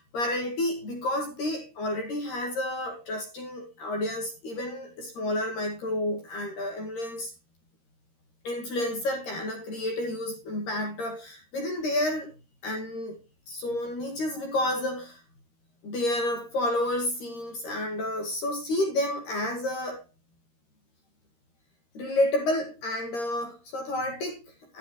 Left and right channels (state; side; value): late; right; 13 ms